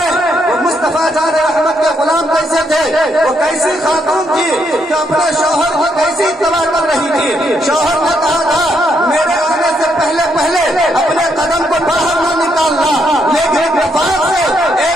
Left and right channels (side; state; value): both; normal; correlation 0.75